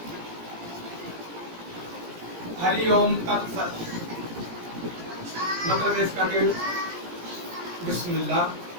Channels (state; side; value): late; left; 17 ms